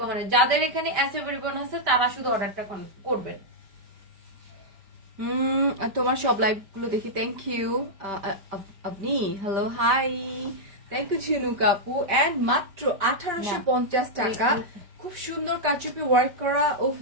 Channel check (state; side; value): late; left; 5.1 ms